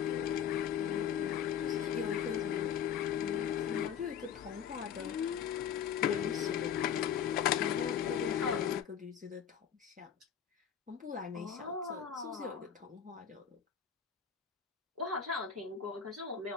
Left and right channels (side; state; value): right; quieter; 8.4 dB